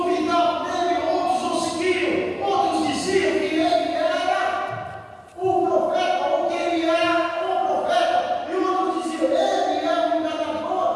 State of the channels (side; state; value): both; identical; correlation 1.00